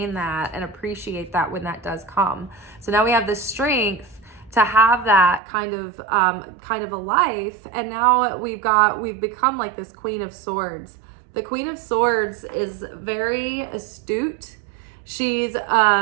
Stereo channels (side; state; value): left; drops out; at 5.4 s